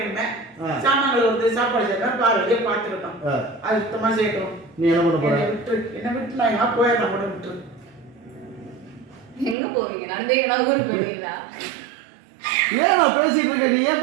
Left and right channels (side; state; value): left; drops out; at 9.6 s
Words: சாமான்கள் வந்து சாப்பாடு செய்யணும் பாருங்க பார்த்துக்கிட்டோம். அது சுத்தமா செய்யணும். நீ என்ன பண்ண போற? என்ன விட்டு நான் எங்க போயிடுறேன் கூட விட்டு. எங்க போவீங்க? நடந்தீங்கன்னா ஊருக்கு போவீங்களா? ஏன் நான் பேசிட்டு இருக்கேன், நீ ஏன்